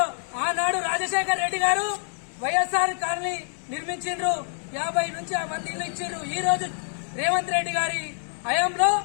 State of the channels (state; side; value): silent; right; 61 dB below the other